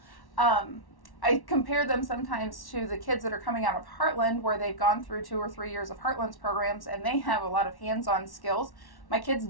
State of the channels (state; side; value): late; right; 1.1 ms